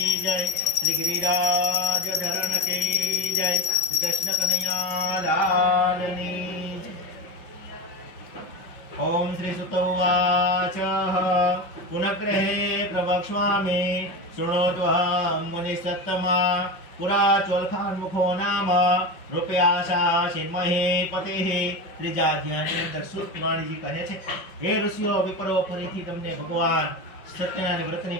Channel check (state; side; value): late; right; 5.6 ms